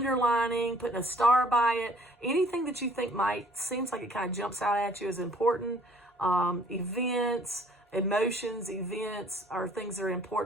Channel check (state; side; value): normal; both; correlation 0.57